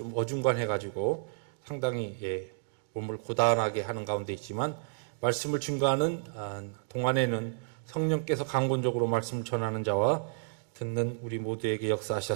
어중간해가지고 상당히 몸을 고단하게 하는 가운데 있지만 말씀을 증거하는 동안에는 성령께서 강권적으로 말씀을 전하는 자와 듣는 우리 모두에게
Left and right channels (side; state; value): left; silent; digital silence